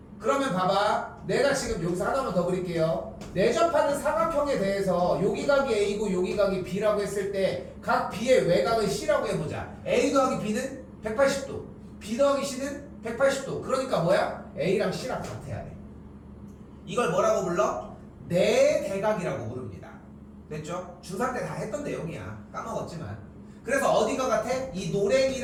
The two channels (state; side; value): identical; both; correlation 1.00